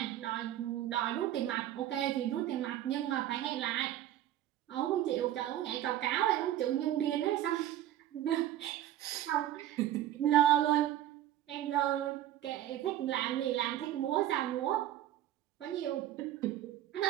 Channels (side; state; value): left; quieter; 12.7 dB